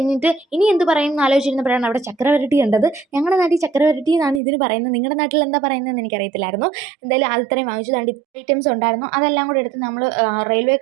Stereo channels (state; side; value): drops out; left; at 4.4 s